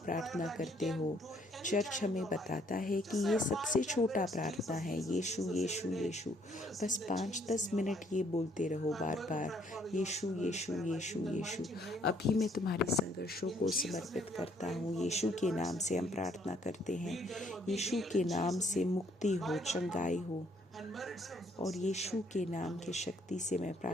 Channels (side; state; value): both; normal; correlation 0.66